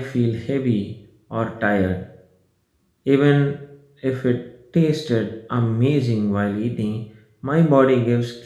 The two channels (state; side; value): identical; both; correlation 1.00